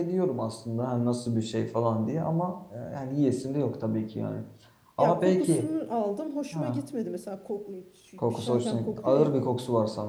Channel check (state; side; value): identical; both; correlation 1.00